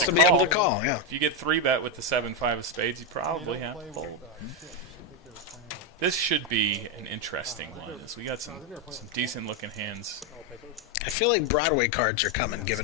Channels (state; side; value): normal; both; correlation 0.05